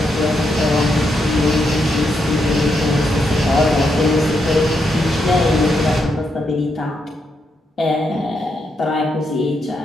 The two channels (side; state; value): both; normal; correlation 0.81